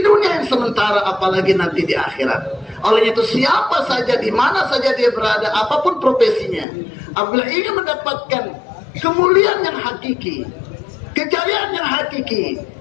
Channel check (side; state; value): right; drops out; at 6.7 s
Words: yang sementara, apalagi nanti di akhirat. Oleh itu siapa saja, di mana saja dia berada, apapun profesinya, apabila ingin mendapatkan kemuliaan yang hakiki, kejayaan yang hakiki,